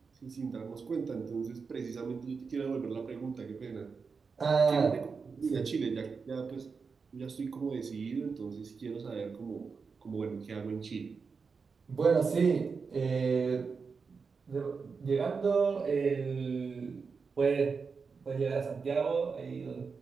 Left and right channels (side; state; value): left; quieter; 5.2 dB